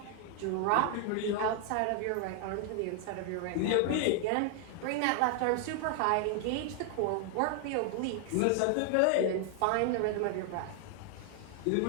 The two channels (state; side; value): different; both; correlation 0.00